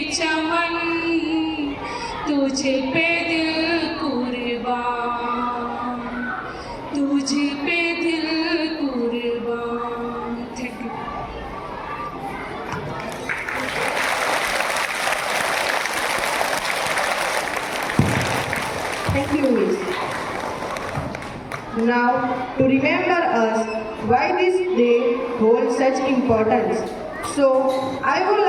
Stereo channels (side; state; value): both; identical; correlation 1.00